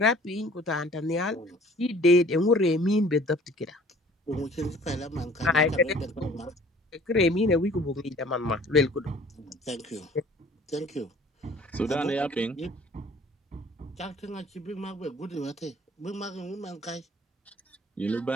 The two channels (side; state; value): both; normal; correlation 0.52